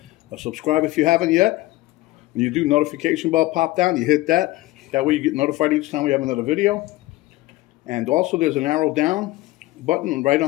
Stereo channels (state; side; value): quieter; right; 18.5 dB